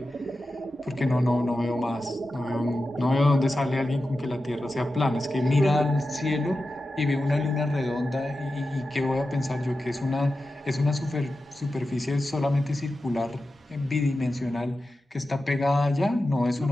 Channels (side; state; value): both; normal; correlation 0.92